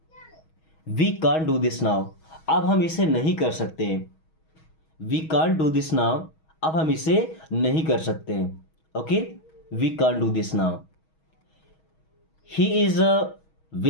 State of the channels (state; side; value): late; right; 6.3 ms